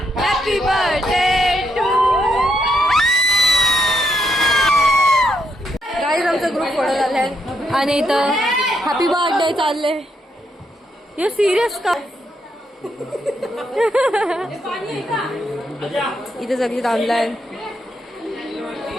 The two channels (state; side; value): normal; both; correlation 0.78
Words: Happy birthday to. Guys आमचा ग्रुप फोटो झालाय आणि इथं हॅपी बर्थडे चालले. हे सिरियस का? इथे सगळी ऑनलाईन